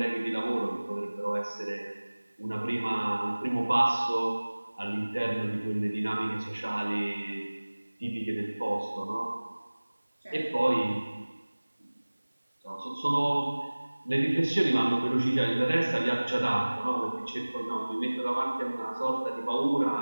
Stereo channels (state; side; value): inverted; both; correlation -1.00